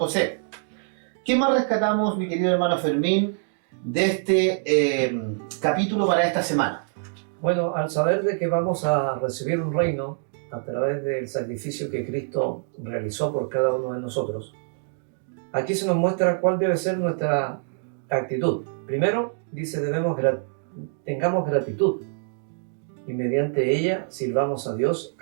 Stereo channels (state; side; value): silent; left; digital silence